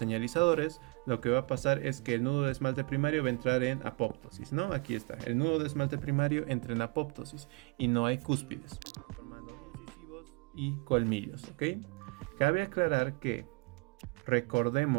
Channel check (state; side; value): quieter; left; 29.2 dB